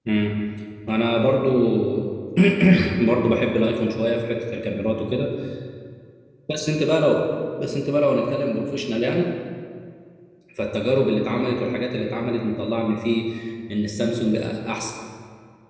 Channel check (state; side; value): identical; both; correlation 1.00